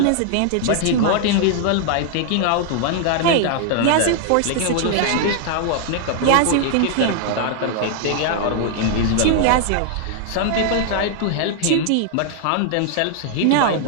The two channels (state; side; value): different; both; correlation 0.00